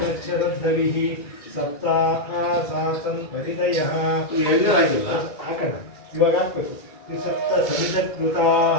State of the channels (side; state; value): right; late; 2.3 ms